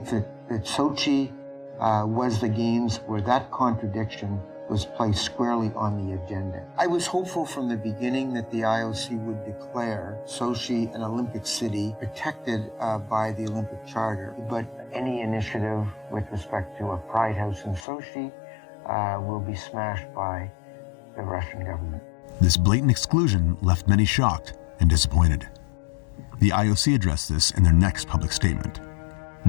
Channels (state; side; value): drops out; right; at 17.8 s